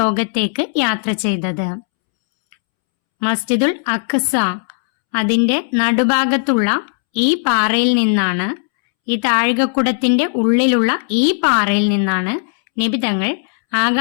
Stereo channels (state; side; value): silent; right; 68 dB below the other